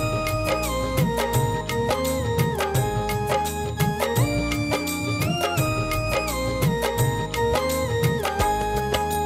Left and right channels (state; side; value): identical; both; correlation 1.00